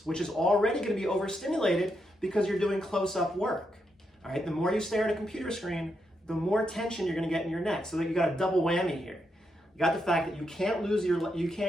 which is already going to be overstimulated because you're doing close-up work. All right, the more you stare at a computer screen, the more tension you're going to get in your neck. So that you got a double whammy here. You got the fact that you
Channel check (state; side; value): normal; both; correlation 0.82